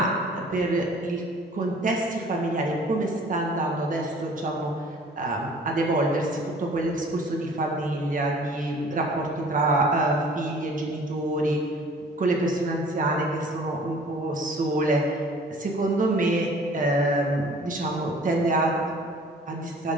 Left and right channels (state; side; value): normal; both; correlation 0.50